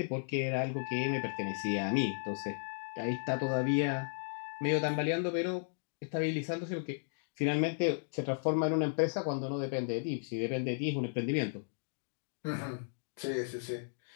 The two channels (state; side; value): silent; right; digital silence